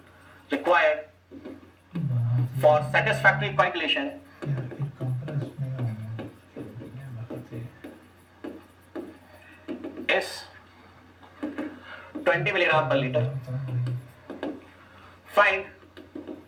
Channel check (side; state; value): both; identical; correlation 1.00